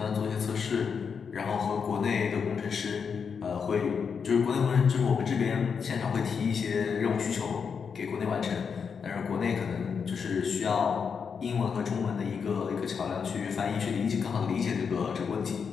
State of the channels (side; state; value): right; quieter; 6.2 dB